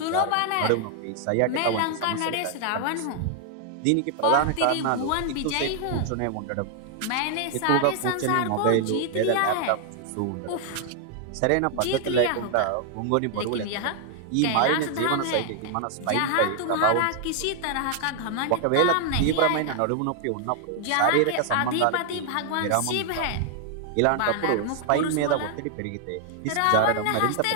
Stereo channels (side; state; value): both; different; correlation 0.00